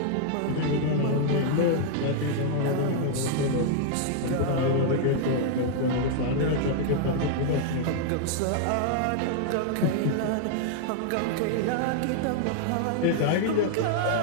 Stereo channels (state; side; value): different; both; correlation -0.01